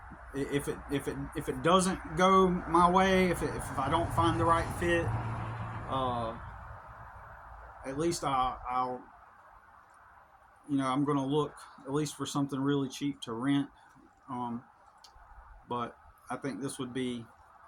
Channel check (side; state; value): both; identical; correlation 1.00